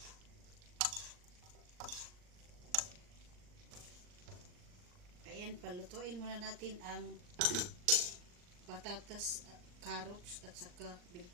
Ayan, palutuin muna natin ang patatas, carrots at saka bell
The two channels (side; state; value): left; late; 39 ms